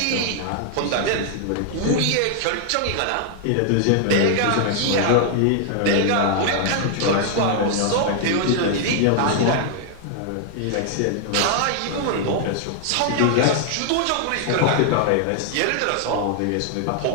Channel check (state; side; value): different; both; correlation 0.00